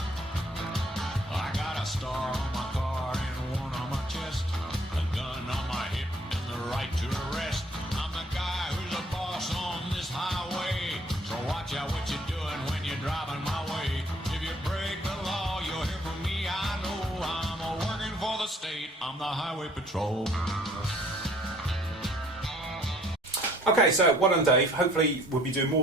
I got a star on my car and one on my chest, a gun on my hip and the right to arrest. I'm the guy who's the boss on this highway, so watch out what you're doing when you're driving my way. If you break the law, you'll hear from me. I know I'm working for the state. I'm the highway patrol. Okay, so well done, Dave. Hopefully we'll be doing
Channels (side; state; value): both; normal; correlation 0.59